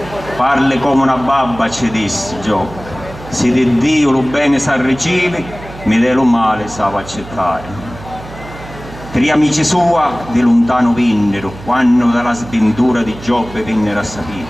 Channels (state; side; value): noise; right; hum, 15 dB below the sound